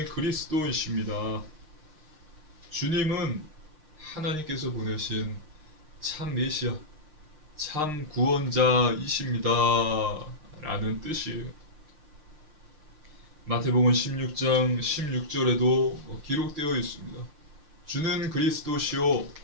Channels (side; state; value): left; late; 6.6 ms